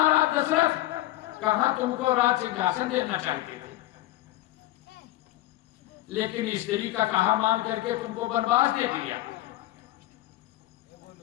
दशरथ कहां तुमको राज सिंहासन देना चाहते थे, लेकिन स्त्री का कहा मान करके तुमको वनवास दे दिया।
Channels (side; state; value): right; quieter; 16.3 dB